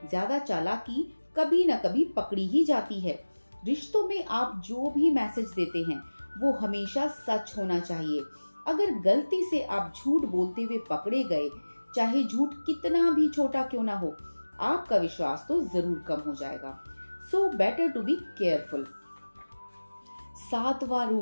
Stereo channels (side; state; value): both; inverted; correlation -1.00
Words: ज्यादा चालाकी कभी न कभी पकड़ी ही जाती है। रिश्तों में आप जो भी मैसेज देते हैं वो हमेशा सच होना चाहिए। अगर गलती से आप झूठ बोलते हुए पकड़े गए, चाहे झूठ कितना भी छोटा क्यों ना हो, आपका विश्वास तो जरूर कम हो जाएगा। So better to be careful. सातवां